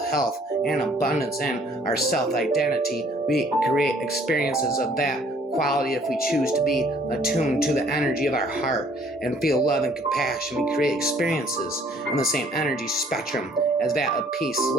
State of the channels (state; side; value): normal; both; correlation 0.59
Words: health and abundance in our self-identity, we create experiences of that quality. If we choose to be attuned to the energy of our heart and feel love and compassion, we create experiences in the same energy spectrum as that of peace,